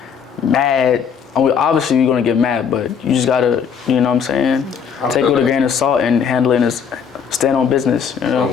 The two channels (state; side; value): quieter; right; 7.0 dB